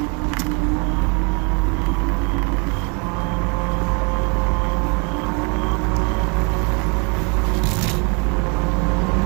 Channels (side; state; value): left; quieter; 33.0 dB